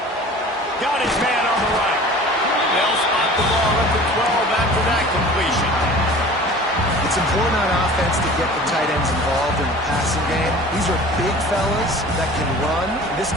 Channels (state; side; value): normal; both; correlation 0.43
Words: Got his man on the right. They'll spot the ball up to 12 after that completion. It's important on offense to get the tight ends involved in the passing game. These are big fellas that can run. This